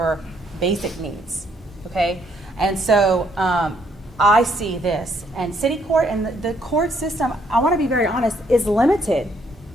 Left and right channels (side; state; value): both; normal; correlation 0.69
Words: basic needs, okay? And so I see this, and city court and the court system, I want to be very honest, is limited